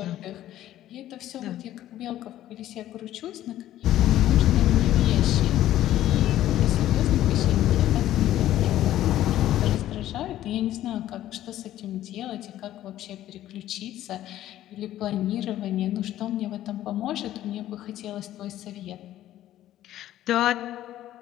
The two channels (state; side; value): quieter; right; 13.2 dB